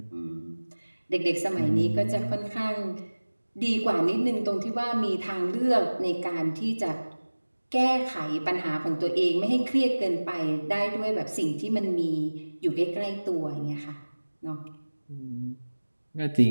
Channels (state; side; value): inverted; both; correlation -1.00